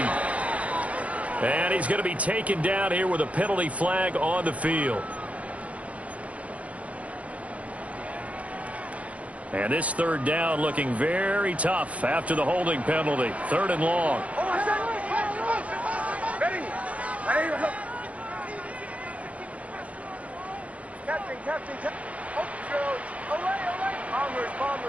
And he's going to be taken down here with a penalty flag on the field. And this 3rd down looking very tough after the holding penalty. 3rd and long. Captain.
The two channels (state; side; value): late; left; 0.066 ms